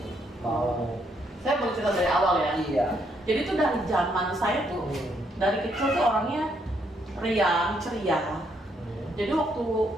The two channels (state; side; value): normal; both; correlation 0.73